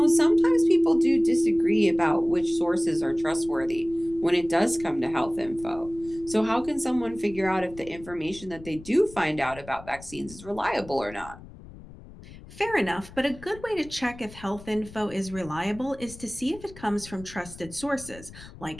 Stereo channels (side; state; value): left; noise; rumble, 18 dB below the sound